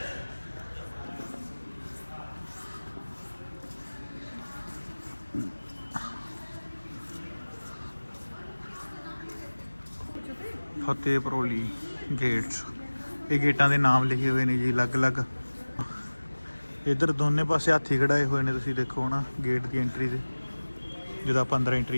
फतेह परोली गेट्स, ये गेटा के नाम लिखे हुए हैं जी अलग अलग। इधर दोनों पासे हाथी कढ़ाए हुए हैं, तुम देखो ना गेट की एंट्री से जो आप अंदर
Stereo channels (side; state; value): both; inverted; correlation -1.00